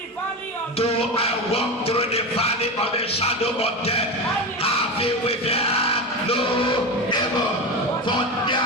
valley of the shadow of death, I feel with them no evil, for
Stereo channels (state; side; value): normal; both; correlation 0.21